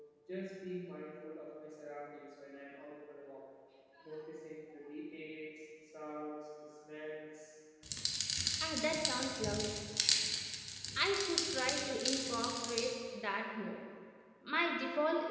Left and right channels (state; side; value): identical; both; correlation 1.00